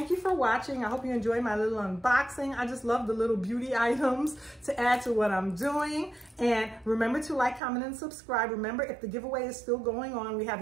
you for watching. I hope you enjoyed my little unboxing. I just love the little beauty items to add to what I'm doing. And remember to like, comment, and subscribe. Remember, if the giveaway is still going on, we have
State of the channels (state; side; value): drops out; left; at 7.6 s